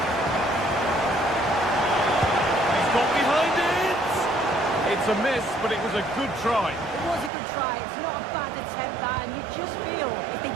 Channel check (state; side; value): drops out; left; at 7.3 s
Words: He's got behind it! It's a miss, but it was a good try. It was a good try. It's not a bad attempt, that, and you just feel if they